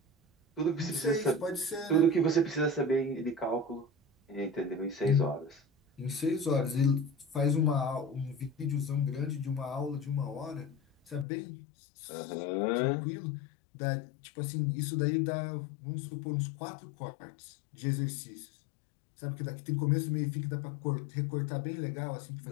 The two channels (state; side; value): drops out; right; at 11.2 s